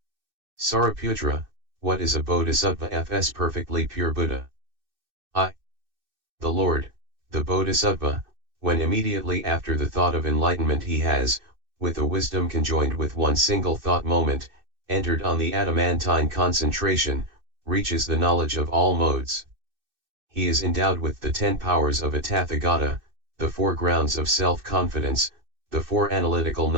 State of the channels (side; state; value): left; late; 2.6 ms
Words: Sariputra, what is a Bodhisattva's perfectly pure Buddha? I. The Lord, the Bodhisattva, when immediately after the thought of enlightenment he has, with a wisdom conjoined with one single thought moment, entered on the adamantine concentration, reaches the knowledge of all modes. He is endowed with the 10 powers of a Tathagata, the 4 grounds of self-confidence, the 4 analytical